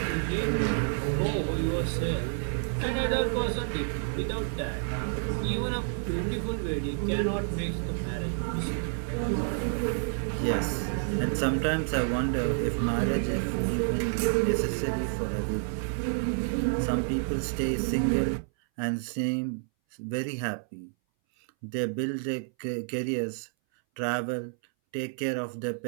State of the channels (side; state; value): left; silent; 58 dB below the other